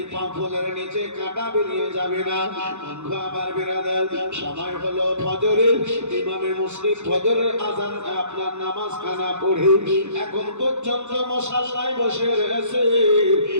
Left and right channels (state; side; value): late; left; 0.82 ms